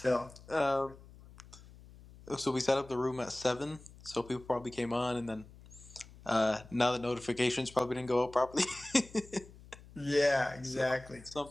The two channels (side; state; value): left; noise; hum, 20 dB below the sound